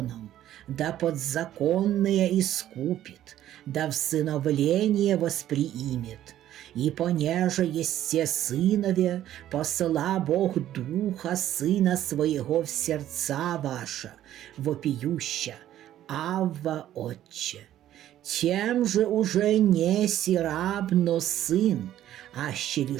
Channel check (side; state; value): left; quieter; 12.4 dB